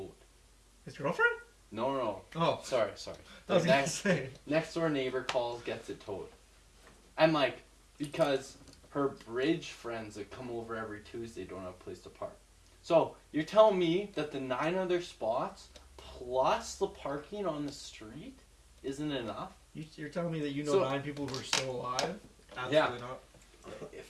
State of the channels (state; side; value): identical; both; correlation 1.00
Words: His girlfriend? No. Oh. Sorry. I was gonna say. Next door neighbor calls, gets it towed. And like, because her bridge friends that come over every Tuesday don't have a place to park. So you're telling me that the 9 other spots plus the parking on the street isn't enough? You're telling me that you know 9 people who are still alive? Absolutely not.